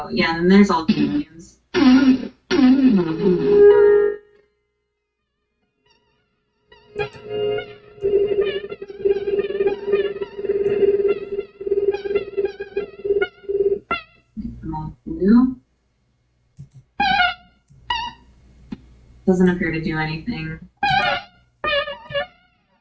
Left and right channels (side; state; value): both; identical; correlation 1.00